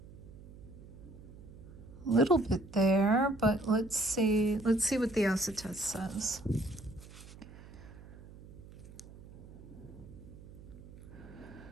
A little bit there, but let's see what the acetous says.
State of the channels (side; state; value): right; noise; hum, 17 dB below the sound